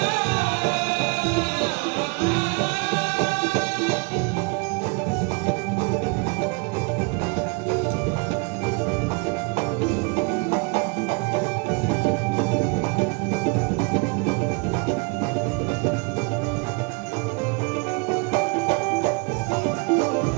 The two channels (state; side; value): quieter; left; 32.2 dB